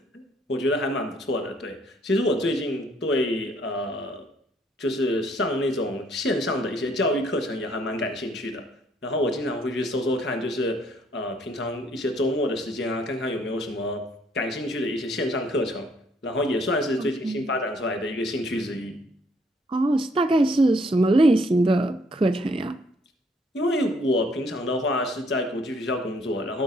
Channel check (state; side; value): normal; both; correlation 0.65